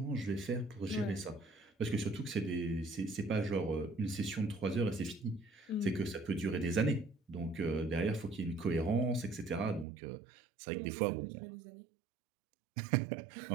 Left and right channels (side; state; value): left; drops out; at 9.9 s